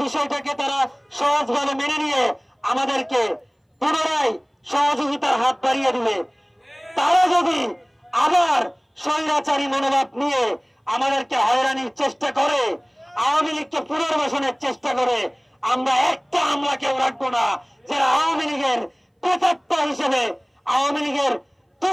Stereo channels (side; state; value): both; identical; correlation 1.00